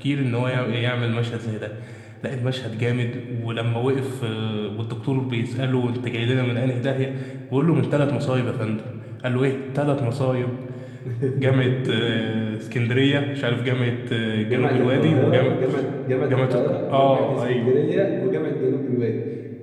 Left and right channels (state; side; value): identical; both; correlation 1.00